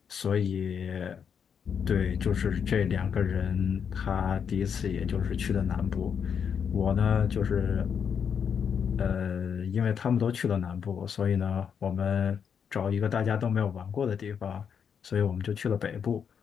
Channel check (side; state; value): right; quieter; 7.3 dB